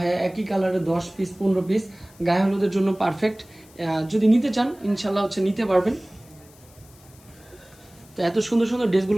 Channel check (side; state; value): left; noise; hiss, 26 dB below the sound